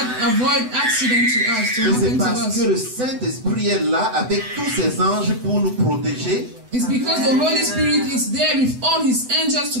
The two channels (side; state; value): left; late; 8.0 ms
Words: avoid accident to us, to Mais c'est happen to parce que us. le Saint-Esprit est là avec tous ses anges pour nous protéger It's because the Holy Spirit is there with all his angels to